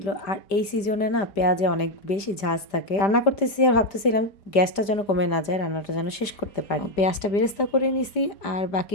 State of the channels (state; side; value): late; right; 5.0 ms